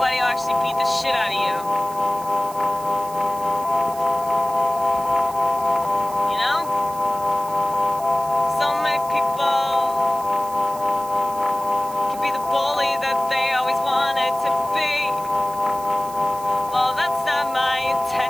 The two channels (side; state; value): right; noise; hiss, 17 dB below the sound